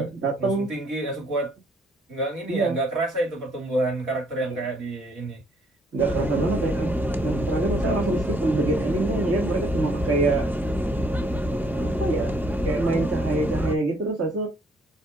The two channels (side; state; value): both; normal; correlation 0.66